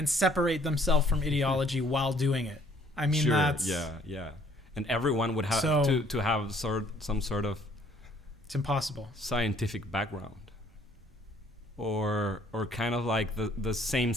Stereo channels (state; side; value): normal; both; correlation 0.61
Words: separate themselves from ideology while doing it. I mean, that's... Yeah. And everyone would have to have some sort of... It's impossible. Scientific background. Or kind of like the same